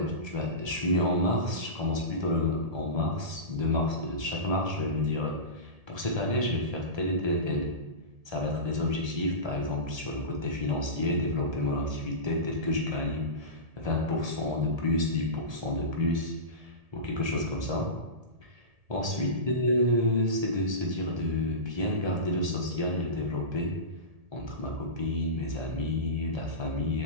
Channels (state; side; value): late; left; 1.7 ms